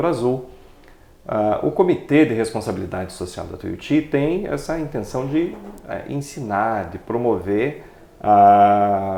Azul. O Comitê de Responsabilidade Social da Tuiuti tem essa intenção de ensinar, de promover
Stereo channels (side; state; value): both; identical; correlation 1.00